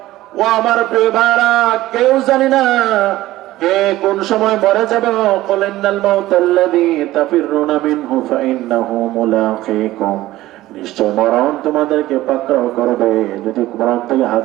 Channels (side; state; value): left; quieter; 16.2 dB